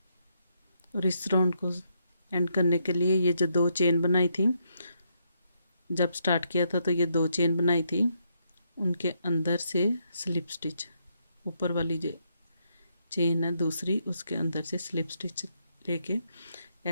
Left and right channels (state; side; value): inverted; both; correlation -0.77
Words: और इस राउंड को एंड करने के लिए ये जो 2 चेन बनाई थी जब स्टार्ट किया था तो ये 2 चेन बनाई थी उनके अंदर से स्लिप स्टिच ऊपर वाली जो चेन है दूसरी उसके अंदर से स्लिप स्टिच लेके